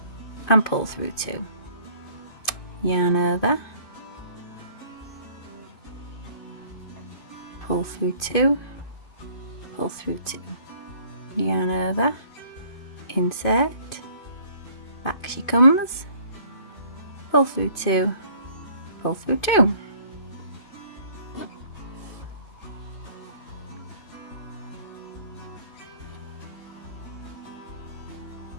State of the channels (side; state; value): right; late; 2.5 ms